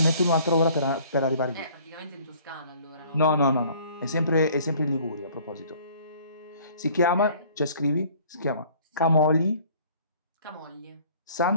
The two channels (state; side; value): inverted; both; correlation -0.54